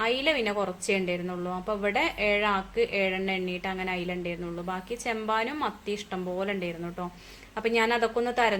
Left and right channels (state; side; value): identical; both; correlation 1.00